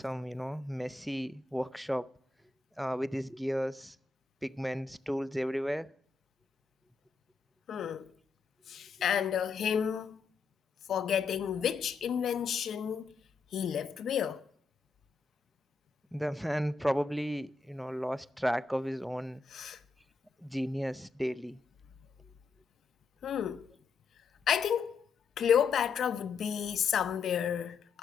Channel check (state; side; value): quieter; right; 4.7 dB